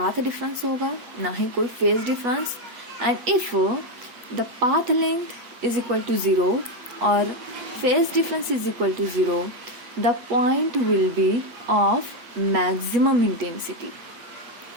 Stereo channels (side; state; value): left; late; 8.3 ms